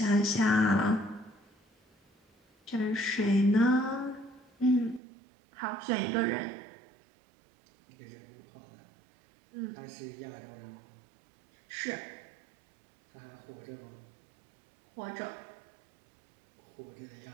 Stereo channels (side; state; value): left; drops out; at 5.0 s